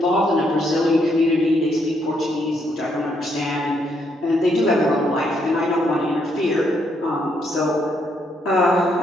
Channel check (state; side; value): normal; both; correlation 0.74